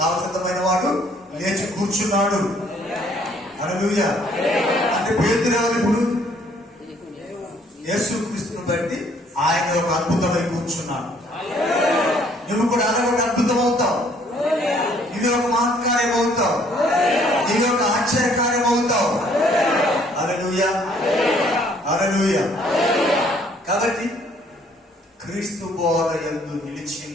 వాడు లేచి కూర్చున్నాడు. హల్లెలూయా. అంటే పేతురు ఎవరు? ఇప్పుడు యేసుక్రీస్తుని బట్టి ఆయన ఒక అద్భుతమై కూర్చున్నాడు. నువ్వు కూడా అలా ఒక అద్భుతం అవుతావు. ఇది ఒక మహత్కార్యం అవుతావు. ఇది ఒక ఆశ్చర్యకార్యం అవుతావు. హల్లెలూయా, హల్లెలూయా. కాబట్టి క్రీస్తు బోధ యందు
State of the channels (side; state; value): both; normal; correlation 0.62